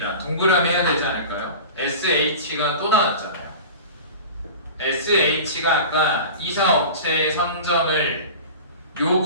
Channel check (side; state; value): both; inverted; correlation -0.35